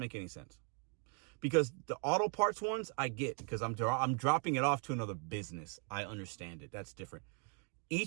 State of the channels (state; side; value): quieter; left; 37.4 dB